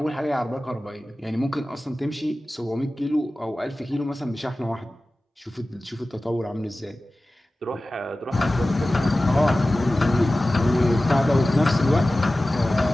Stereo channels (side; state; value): both; normal; correlation 0.96